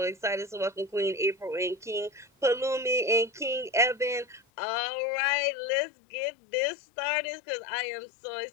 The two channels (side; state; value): right; drops out; at 4.4 s